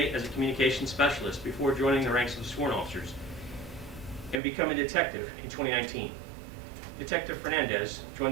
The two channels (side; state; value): left; drops out; at 4.4 s